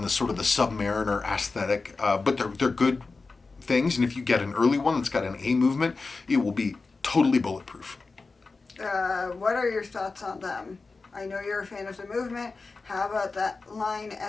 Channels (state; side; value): quieter; right; 4.0 dB